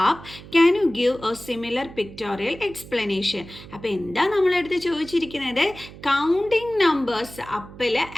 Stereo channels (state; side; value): noise; right; hum, 17 dB below the sound